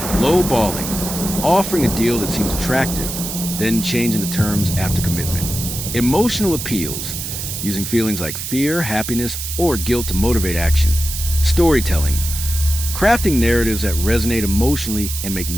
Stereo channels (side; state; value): right; noise; hiss, 6 dB below the sound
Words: Low-balling, offering a deal that seems attractive, then changing the terms after commitment. Emotional appeals, using feelings like fear, happiness, or guilt to motivate action. Storytelling, crafting narratives that resonate emotionally and make